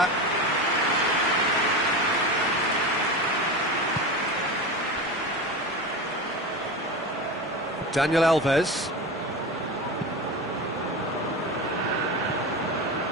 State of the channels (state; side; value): normal; both; correlation 0.25